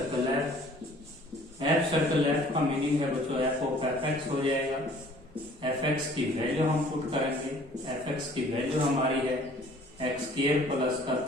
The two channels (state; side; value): normal; both; correlation 0.54